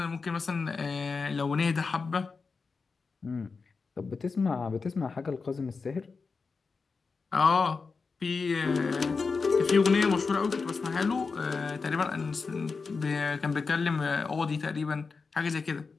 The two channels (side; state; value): right; quieter; 4.6 dB